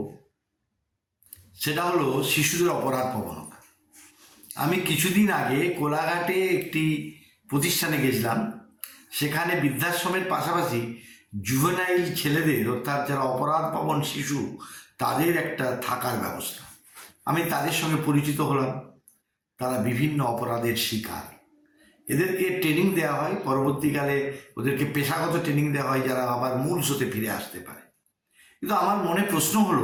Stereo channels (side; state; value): both; identical; correlation 1.00